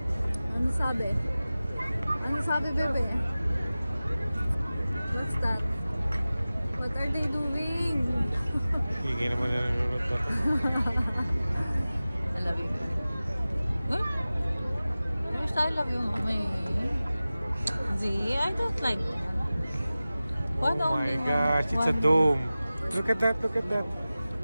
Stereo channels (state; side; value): inverted; both; correlation -0.97